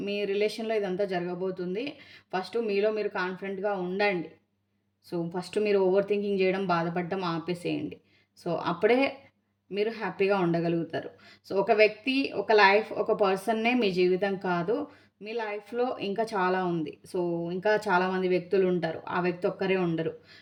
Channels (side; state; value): both; identical; correlation 1.00